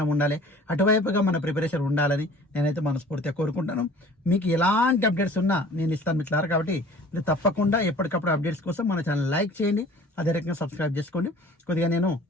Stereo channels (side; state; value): both; normal; correlation 0.48